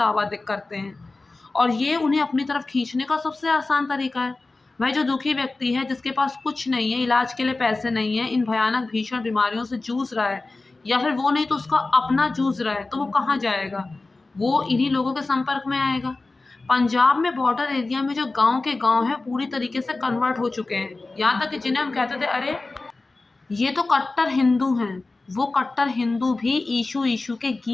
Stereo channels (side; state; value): right; quieter; 3.4 dB